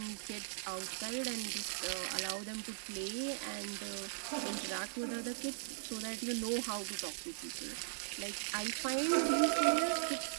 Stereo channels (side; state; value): left; silent; 52 dB below the other